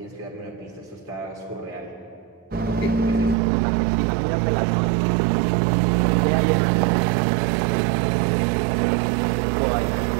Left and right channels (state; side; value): drops out; left; at 3.4 s